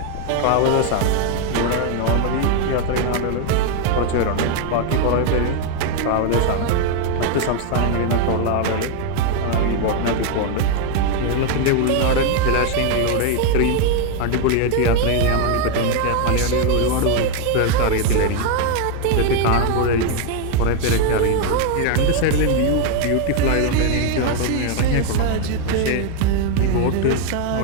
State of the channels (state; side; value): different; both; correlation 0.01